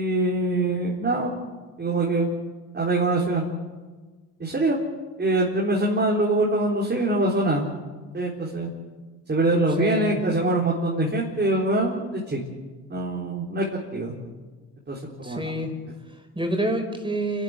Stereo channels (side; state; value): both; normal; correlation 0.24